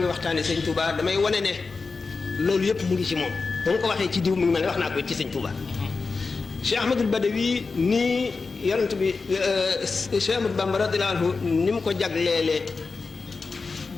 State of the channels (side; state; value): right; quieter; 4.3 dB